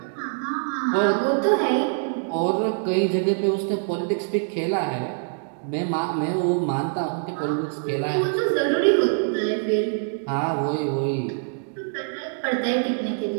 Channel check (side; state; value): left; silent; digital silence